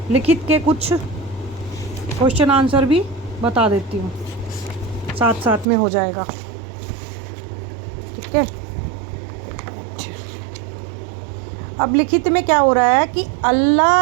के कुछ क्वेश्चन आंसर भी बता देती हूँ, साथ साथ में हो जाएगा। ठीक है। अब लिखित में क्या हो रहा है कि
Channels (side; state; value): left; drops out; at 5.7 s